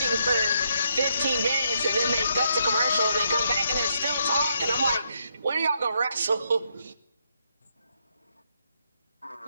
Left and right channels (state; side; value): inverted; both; correlation -0.76